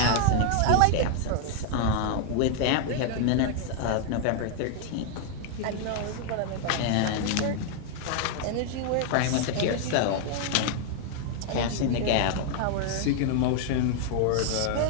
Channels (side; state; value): both; different; correlation 0.00